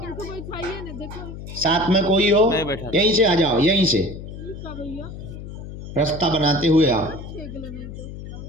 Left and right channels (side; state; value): left; noise; hum, 11 dB below the sound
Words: साथ में कोई हो, यहीं से आ जाओ, यहीं से रास्ता बनाते हुए आओ।